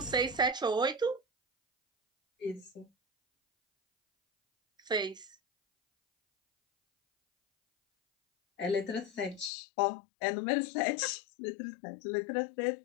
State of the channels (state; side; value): drops out; right; at 9.5 s